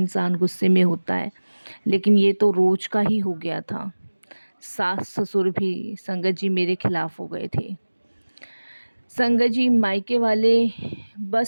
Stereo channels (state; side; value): inverted; both; correlation -1.00